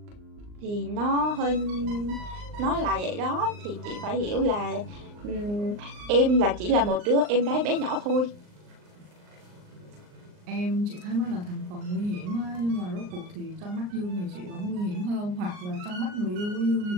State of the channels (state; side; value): late; left; 39 ms